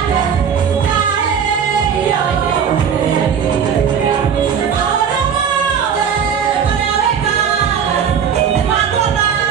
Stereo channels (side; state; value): left; quieter; 7.5 dB